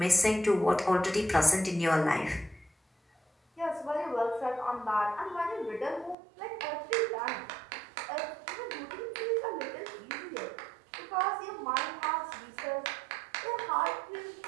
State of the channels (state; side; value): drops out; left; at 6.2 s